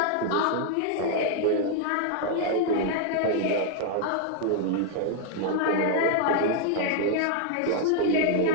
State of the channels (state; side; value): different; both; correlation 0.00